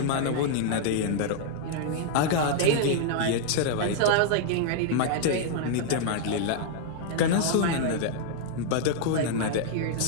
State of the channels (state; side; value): different; both; correlation 0.00